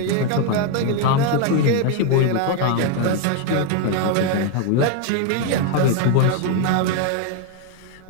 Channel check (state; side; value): different; both; correlation 0.01